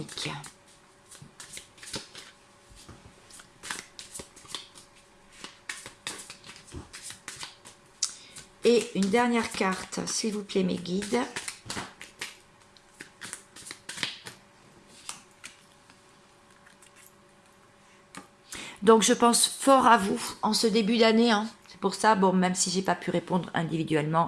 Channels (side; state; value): both; identical; correlation 1.00